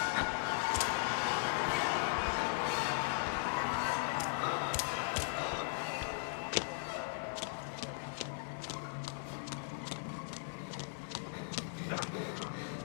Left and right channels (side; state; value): right; silent; digital silence